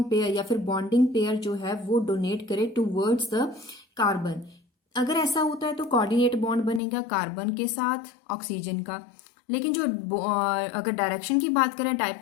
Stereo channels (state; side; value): drops out; right; at 6.8 s